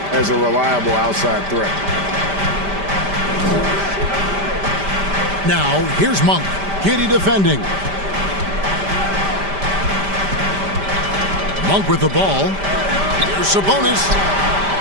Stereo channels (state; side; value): late; left; 5.1 ms